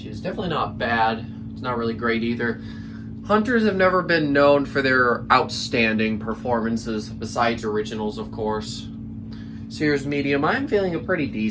is definitely not bad. It's not really great either. Hunters have never been known for their outstanding performances, besides originals, of course. So here's medium. I'm feeling a pretty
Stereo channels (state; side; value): identical; both; correlation 1.00